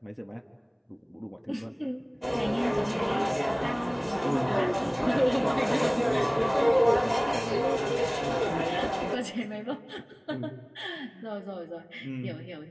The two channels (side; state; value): both; identical; correlation 1.00